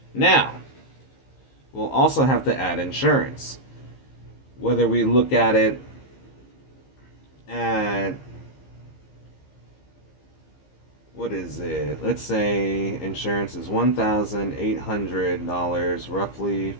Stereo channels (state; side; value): late; right; 15 ms